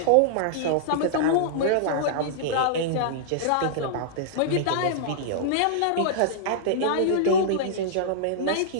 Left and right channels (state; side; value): different; both; correlation -0.02